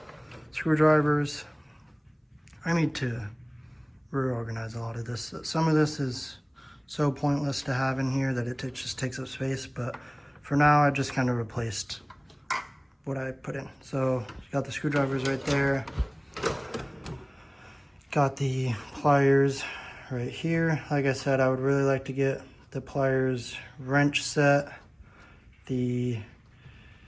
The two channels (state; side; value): identical; both; correlation 1.00